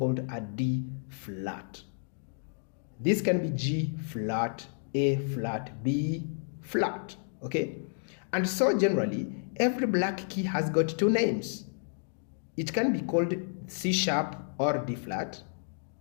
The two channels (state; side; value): silent; right; digital silence